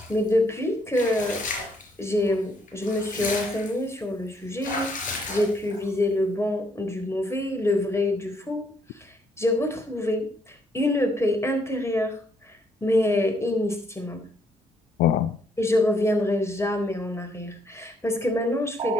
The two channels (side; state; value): both; normal; correlation 0.70